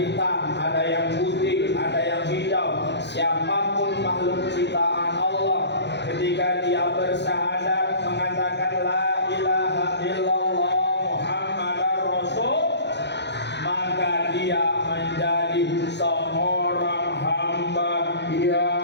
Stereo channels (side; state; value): right; late; 0.50 ms